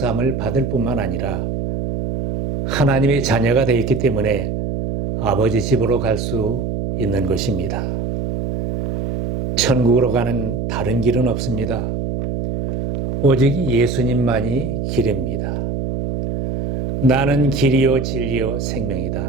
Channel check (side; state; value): right; noise; hum, 2 dB below the sound